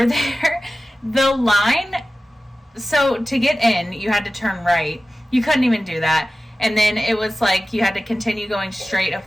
there. The line, so to get in, you had to turn right. You couldn't even do that. And then it was like you had to continue going straight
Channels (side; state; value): both; normal; correlation 0.95